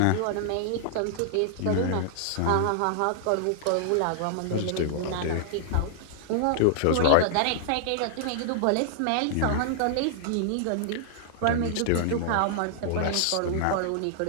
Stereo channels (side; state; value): both; different; correlation -0.01